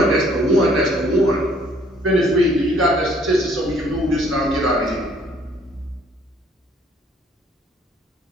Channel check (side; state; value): both; normal; correlation 0.61